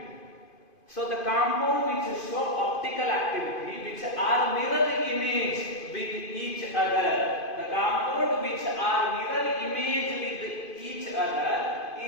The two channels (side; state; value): right; late; 2.5 ms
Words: So the compound which show optical activity which are mirror image with each other. The compound which are mirror image with each other